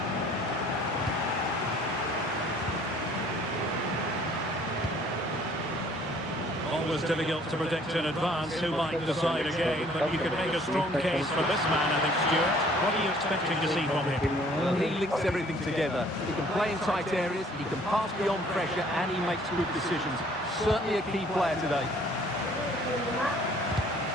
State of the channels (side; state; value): both; normal; correlation 0.57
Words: Always difficult to predict in advance who might decide a game, but you can make a strong case for this man, I think, Stuart. What are you expecting to see from him? Well, he links everything together. He can play in tight areas, he can pass beyond pressure, and he makes good decisions. Certainly a key player today.